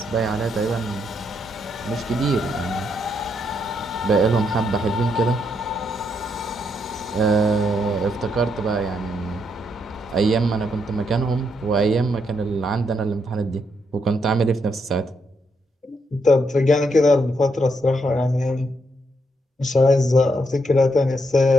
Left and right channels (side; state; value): both; normal; correlation 0.78